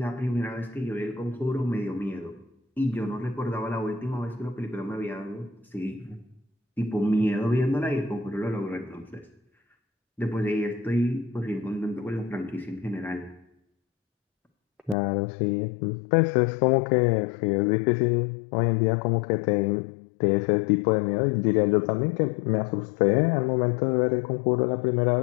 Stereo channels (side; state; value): right; drops out; at 15.0 s